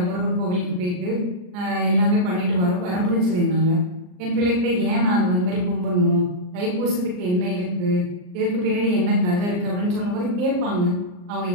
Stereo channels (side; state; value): left; late; 39 ms